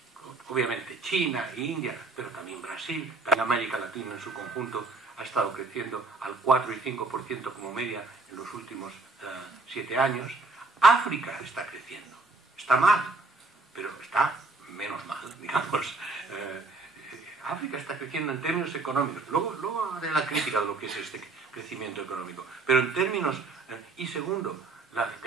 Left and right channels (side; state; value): left; quieter; 3.5 dB